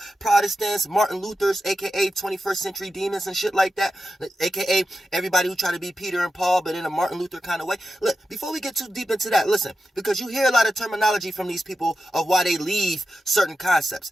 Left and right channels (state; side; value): normal; both; correlation 0.90